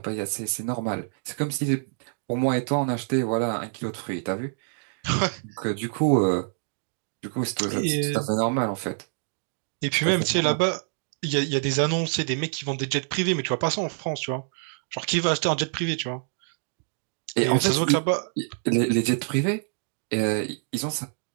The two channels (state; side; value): silent; left; 61 dB below the other